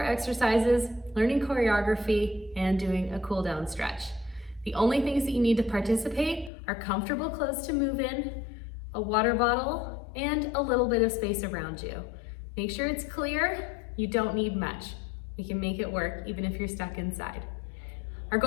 exercises, learning choreography, and doing a cool down stretch. The only things that you need to participate are comfortable clothes to move in, a water bottle, and a little bit of space around you. Make sure it's clear. You don't need much. We can make it work even if you're stuck inside. Our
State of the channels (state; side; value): drops out; right; at 6.5 s